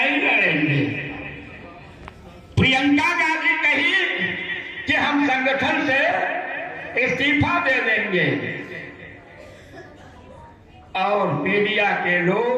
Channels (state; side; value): identical; both; correlation 1.00